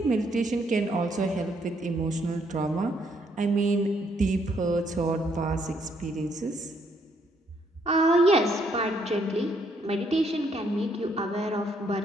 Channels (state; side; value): normal; both; correlation 0.71